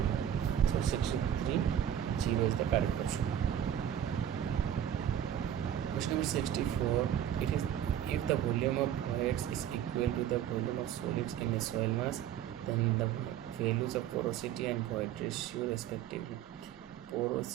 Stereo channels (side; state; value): left; quieter; 10.3 dB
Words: So 63 0 is the correct option. Question number 64, it is if the volume of fluids is equal to the volume of solids in a soil mass, then the values of porosity and void ratio respectively.